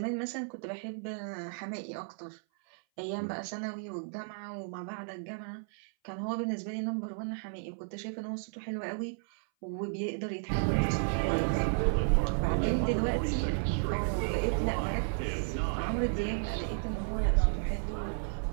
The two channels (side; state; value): left; silent; 56 dB below the other